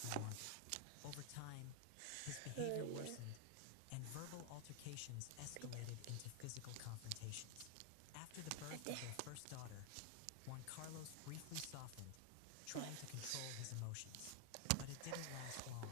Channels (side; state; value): both; different; correlation 0.00